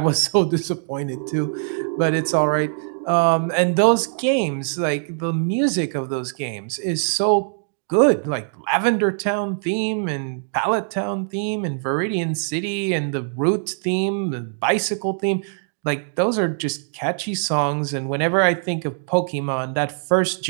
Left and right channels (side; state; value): left; silent; digital silence